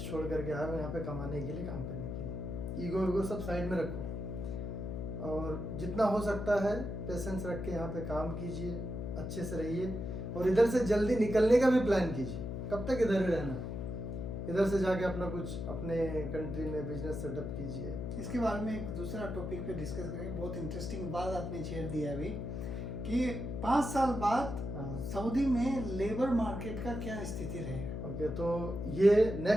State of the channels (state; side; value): noise; left; hum, 5 dB below the sound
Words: छोड़ करके आए हो यहाँ पे कमाने के लिए, काम करने के लिए। ईगो सब साइड में रखो और जितना हो सकता है पेशेंस रख के यहाँ पे काम कीजिए, अच्छे से रहिए और इधर से जल्दी निकलने का भी प्लान कीजिए। कब तक इधर ही रहना, इधर से जाके अपना कुछ अपने कंट्री में बिजनेस सेटअप कीजिए। इसके बारे में एक दूसरा टॉपिक पे डिस्कस करेंगे। बहुत इंटरेस्टिंग बात आपने छेड़ दिया अभी कि 5 साल बाद सऊदी में लेबर मार्केट का क्या स्थिति रहेगा। ओके, तो ये